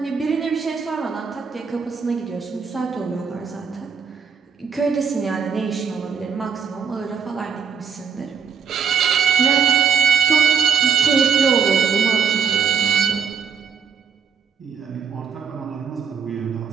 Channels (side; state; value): left; quieter; 6.7 dB